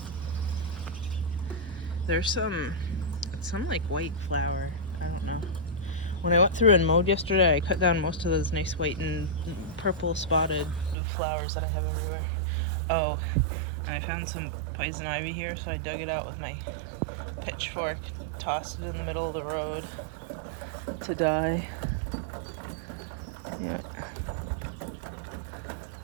There's some like white flower. I don't know. When I went through and mowed yesterday, I cut down most of those nice white and purple spotted flowers that I have everywhere. Oh, and I found some poison ivy here, so I dug it out with my pitchfork, tossed it in the middle of the road to die. Yeah.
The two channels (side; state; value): left; drops out; at 11.0 s